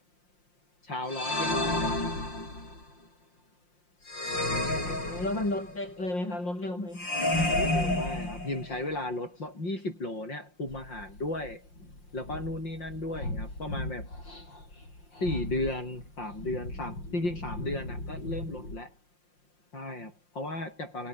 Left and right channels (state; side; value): late; right; 5.7 ms